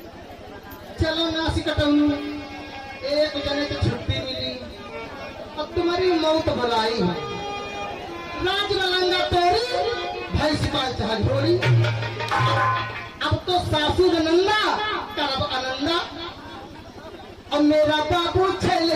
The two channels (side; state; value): both; identical; correlation 1.00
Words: चलो नासी कटाऊ एक जने तो छुट्टी मिली अब तुम्हारी मौत बुलाई है राज लंगा तोरी भाई सिपाही चाह ढोरी अब तो सासू नंदा करब आनंदा और मेरा बाबू छेल